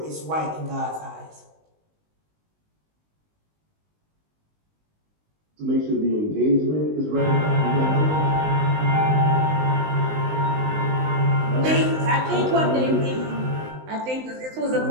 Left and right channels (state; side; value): late; left; 19 ms